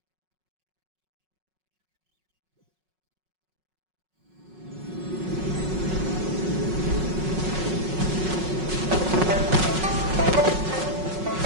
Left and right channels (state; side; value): late; left; 5.4 ms